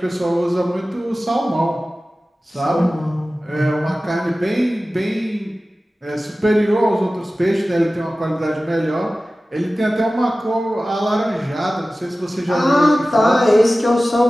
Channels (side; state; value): both; normal; correlation 0.96